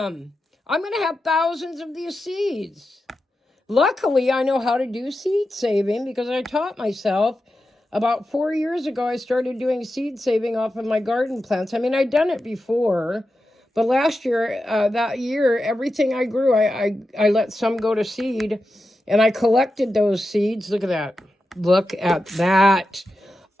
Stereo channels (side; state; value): both; normal; correlation 0.90